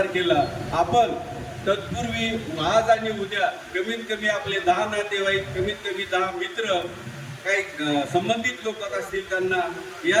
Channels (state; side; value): identical; both; correlation 1.00